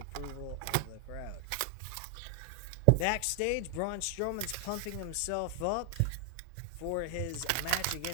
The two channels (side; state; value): both; different; correlation 0.00